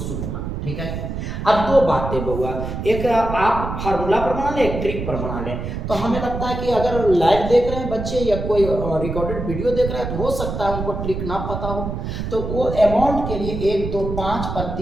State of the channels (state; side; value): noise; right; rumble, 5 dB below the sound